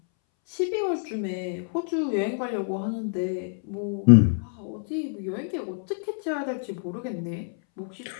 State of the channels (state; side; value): silent; right; 60 dB below the other